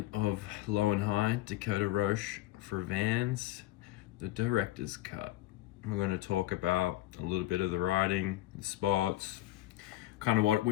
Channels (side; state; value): right; quieter; 16.0 dB